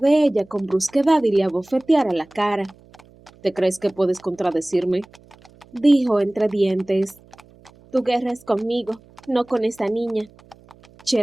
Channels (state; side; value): noise; right; hum, 27 dB below the sound